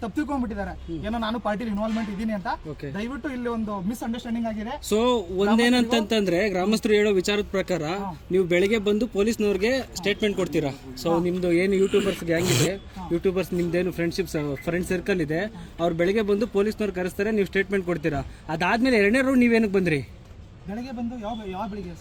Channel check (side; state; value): both; identical; correlation 1.00